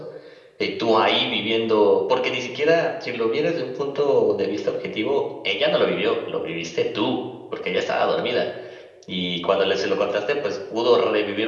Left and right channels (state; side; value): identical; both; correlation 1.00